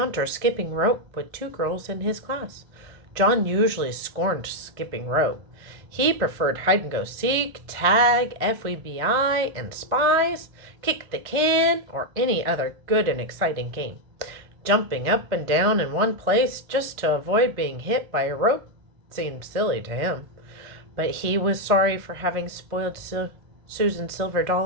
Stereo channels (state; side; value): late; left; 2.1 ms